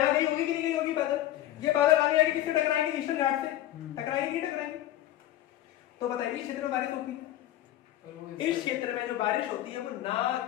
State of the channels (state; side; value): quieter; right; 13.6 dB